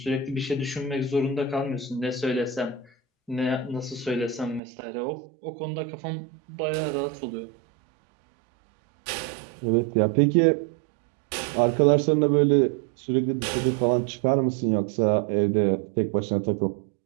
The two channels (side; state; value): left; drops out; at 4.6 s